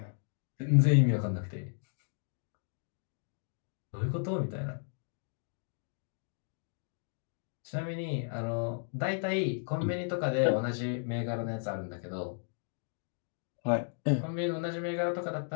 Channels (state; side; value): silent; right; digital silence